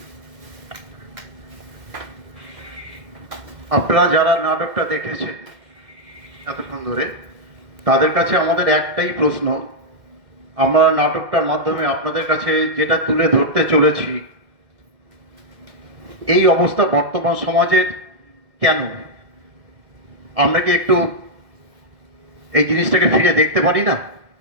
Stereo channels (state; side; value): late; left; 2.1 ms